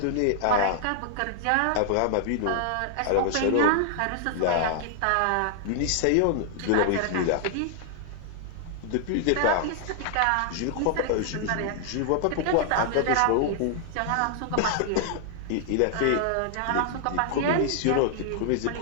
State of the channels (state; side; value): different; both; correlation 0.00